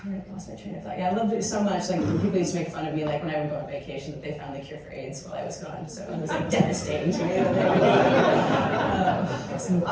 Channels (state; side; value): identical; both; correlation 1.00